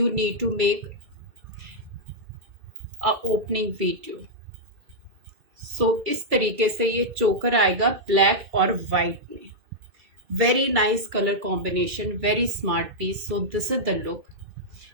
need to make a opening video. So इस तरीके से ये चोकर आएगा ब्लैक और व्हाइट में. Very nice colour combination, very smart piece. So this is the look.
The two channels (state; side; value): late; left; 2.3 ms